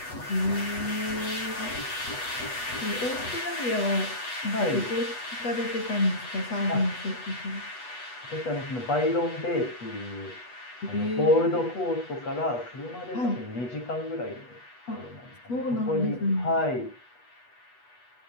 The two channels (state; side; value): late; right; 8.2 ms